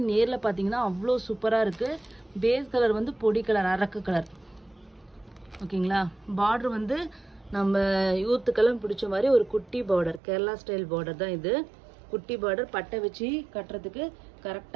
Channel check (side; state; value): left; drops out; at 10.2 s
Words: நேரில் பார்த்தீங்கன்னா அவ்வளோ சூப்பராக இருக்குது. பேஸ் கலர் வந்து பொடி கலர், அரக்கு கலர். ஓகேங்களா, பார்டர் வந்து நம்ம யூத்துக்கெல்லாம் பிடிச்ச மாதிரி ஒரு குட்டி பார்டர், கேரளா ஸ்டைல் பார்டர் தான் இது. குட்டி பார்டர், பட்டை வச்சு கட்டுறதுக்கு